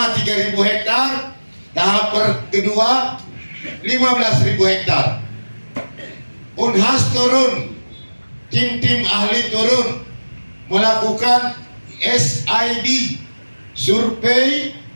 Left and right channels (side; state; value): both; inverted; correlation -1.00